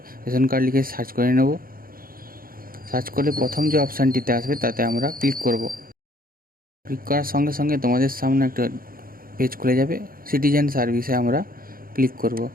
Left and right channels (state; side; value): late; left; 0.42 ms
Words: রেশন কার্ড লিখে সার্চ করে নেব। সার্চ করলে প্রথম যে অপশানটিতে আসবে তাতে আমরা ক্লিক করব। ক্লিক করার সঙ্গে সঙ্গে তোমাদের সামনে একটা পেজ খুলে যাবে। সিটিজেন সার্ভিসে আমরা ক্লিক করব।